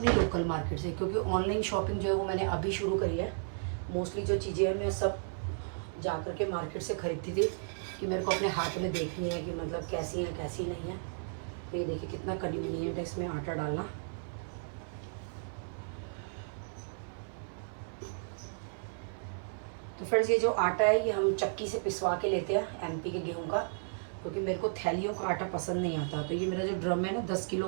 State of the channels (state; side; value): silent; left; 55 dB below the other